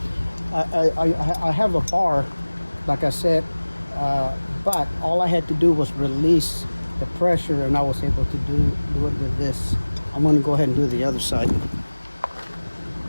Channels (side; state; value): both; inverted; correlation -1.00